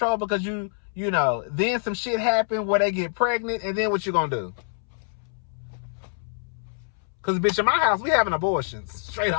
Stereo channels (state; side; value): silent; right; 61 dB below the other